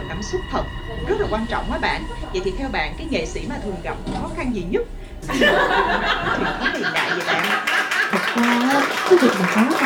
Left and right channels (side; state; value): both; identical; correlation 1.00